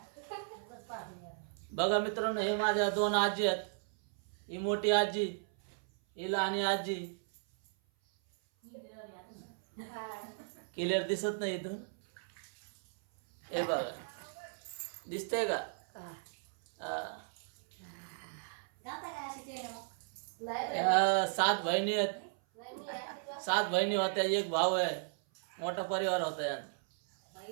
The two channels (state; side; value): silent; left; 54 dB below the other